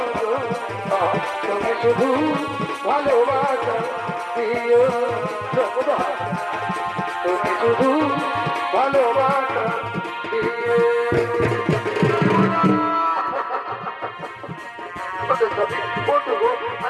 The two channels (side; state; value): both; identical; correlation 1.00